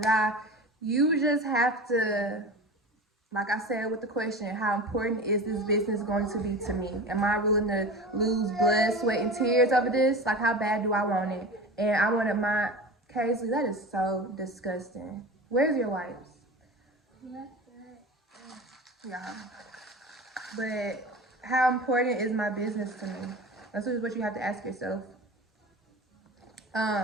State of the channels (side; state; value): both; normal; correlation 0.32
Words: You just have to, like I said with the question, how important is this business going to be to me? Am I willing to lose blood, sweat, and tears over this? Like, how bad do I want it? And I wanted my, Casey, that is so disgusting. Where's your wipes? Yeah. But how important is my business to me? That's what you have to ask yourself.